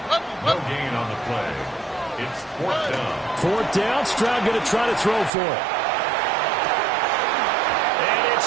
gain on the play. It's 4th down. 4th down. Stroud going to try to throw for it. And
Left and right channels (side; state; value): left; drops out; at 5.3 s